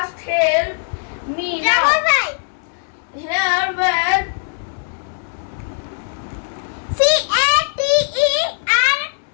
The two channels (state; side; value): silent; right; digital silence